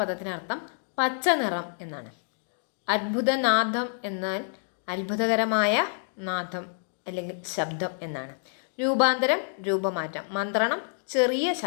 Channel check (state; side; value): silent; right; digital silence